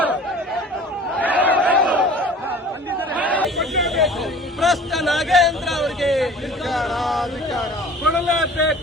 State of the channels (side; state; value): both; normal; correlation 0.45